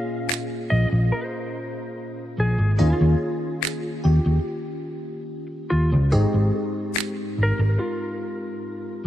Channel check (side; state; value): both; normal; correlation 0.88